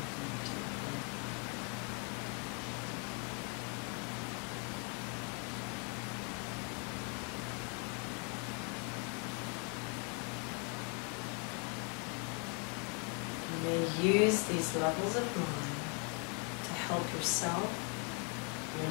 go deeper. You may use these levels of mind to help yourself, your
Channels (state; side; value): quieter; right; 36.6 dB